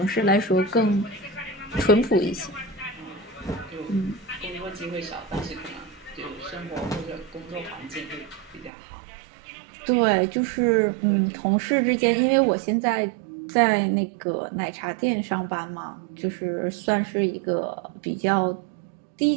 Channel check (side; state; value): left; drops out; at 8.7 s